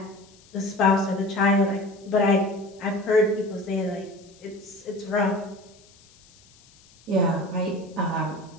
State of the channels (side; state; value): left; noise; hiss, 27 dB below the sound